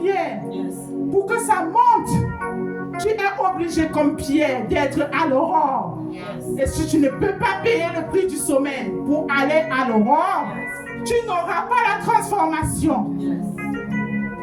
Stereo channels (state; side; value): identical; both; correlation 1.00